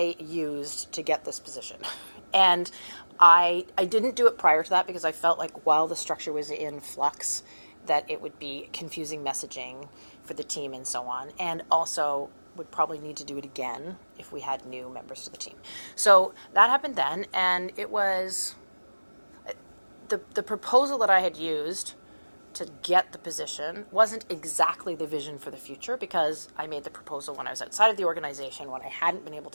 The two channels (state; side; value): inverted; both; correlation -1.00